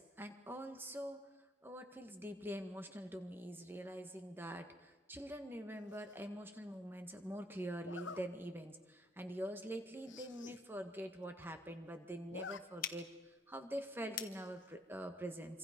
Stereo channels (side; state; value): both; normal; correlation 0.69